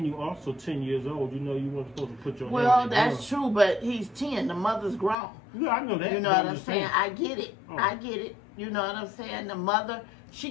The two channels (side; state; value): right; drops out; at 5.2 s